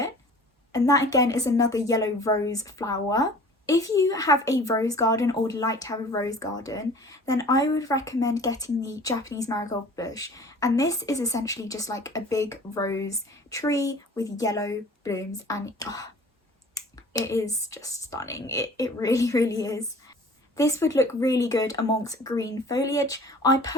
and that again is another yellow rose flower. If you have a rose garden or would like to have a rose garden, then I would recommend getting the Japanese marigold bush, and this is essentially just like a big rose tree with yellow blooms, and it is just stunning. It really is. This would look really good amongst green foliage. I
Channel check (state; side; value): normal; both; correlation 0.46